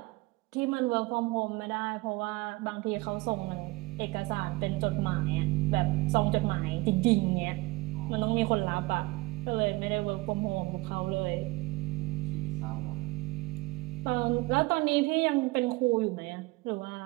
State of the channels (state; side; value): quieter; left; 23.1 dB